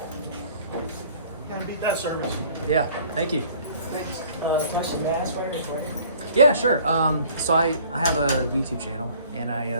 Gotta beat that service. Yeah, thank you. Question, may I ask why you're recording? Yeah, sure. So I have a YouTube channel, and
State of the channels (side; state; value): both; inverted; correlation -0.53